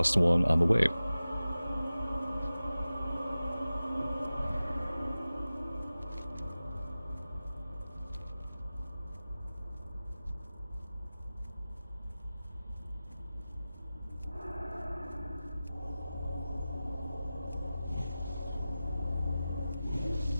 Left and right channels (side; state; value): both; inverted; correlation -0.96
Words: one on the way.